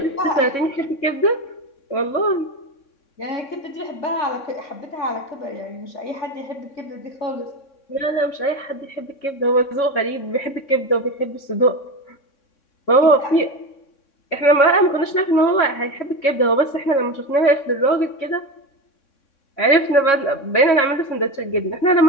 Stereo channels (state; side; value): late; right; 3.6 ms